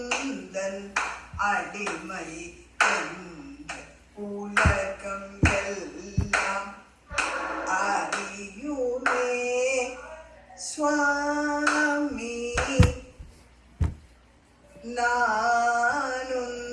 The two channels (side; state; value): both; identical; correlation 1.00